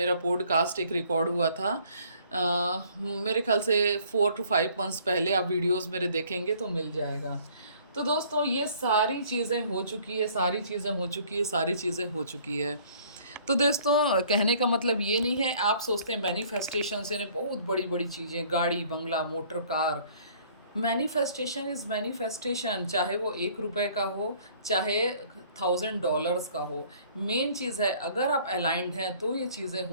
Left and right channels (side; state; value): both; inverted; correlation -0.57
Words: पॉडकास्ट एक रिकॉर्ड हुआ था मेरे ख्याल से 4 to 5 months पहले। आप वीडियोस मेरे देखेंगे तो मिल जाएगा। तो दोस्तों ये सारी चीज़ें हो चुकी है, सारी चीज़ें हो चुकी है, सारी चीज़ें हो चुकी है। तो दोस्तों कहने का मतलब ये नहीं है, आप सोचते हैं मैनिफेस्टेशन से बहुत बड़ी बड़ी चीज़ें, गाड़ी बंगला motor car. Manifestation is manifestation, चाहे वो 1 रुपए का हो, चाहे $1000 का हो। मेन चीज़ है अगर आप अलाइंड हैं तो ये चीज़ें